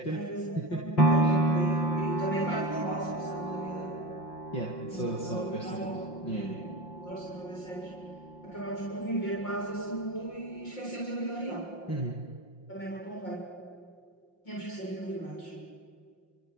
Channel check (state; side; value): late; right; 5.7 ms